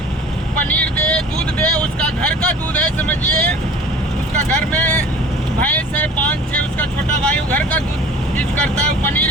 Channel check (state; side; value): normal; both; correlation 0.44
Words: पनीर दे, दूध दे, उसका घर का दूध है, समझिए उसका घर में भैंस है 5-6, उसका छोटा भाई घर का दूध यूज करता है।